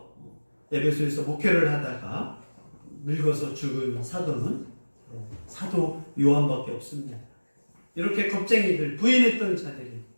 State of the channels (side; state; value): both; inverted; correlation -1.00